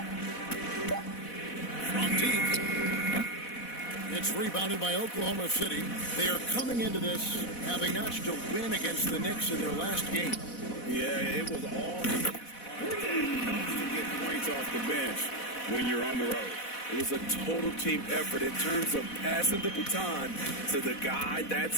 From deep. It's rebounded by Oklahoma City. They are coming into this having notched a win against the Knicks in their last game. Yeah, it was all to get points off the bench when you're on the road. It was a total team effort in terms of passing the baton to the guy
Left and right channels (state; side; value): late; right; 4.1 ms